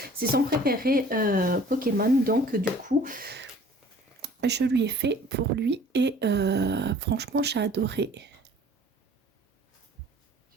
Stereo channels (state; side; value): normal; both; correlation 0.51